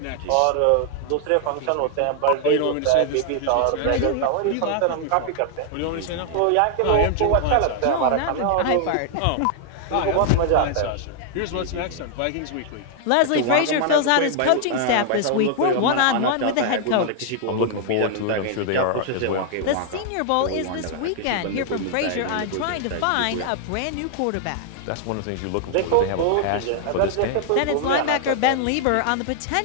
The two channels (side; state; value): both; different; correlation 0.00